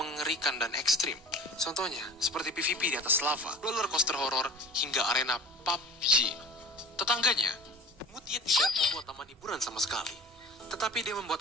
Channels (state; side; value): normal; both; correlation 0.40